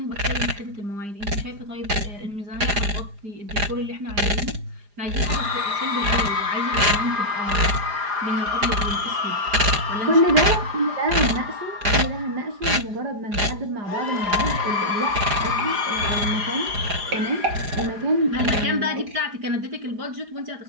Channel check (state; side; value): late; left; 4.9 ms